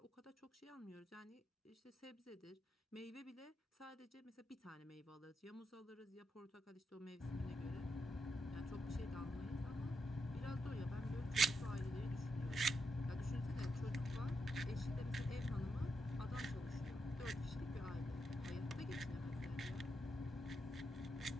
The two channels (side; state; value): both; normal; correlation 0.83